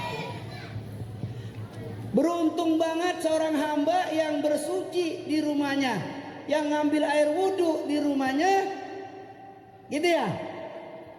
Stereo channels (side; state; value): both; identical; correlation 1.00